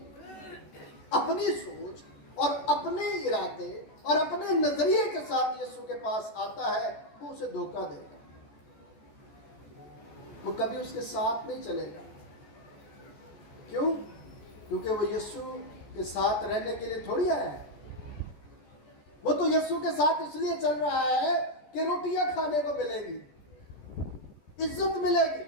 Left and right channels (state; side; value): late; right; 13 ms